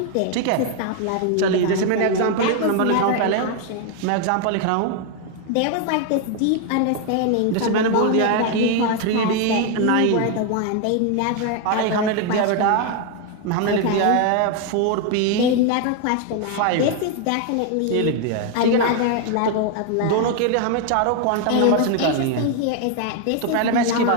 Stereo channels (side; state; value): both; different; correlation 0.01